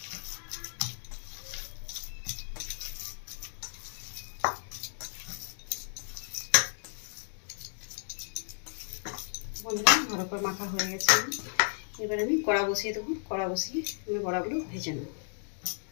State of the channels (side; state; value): right; silent; digital silence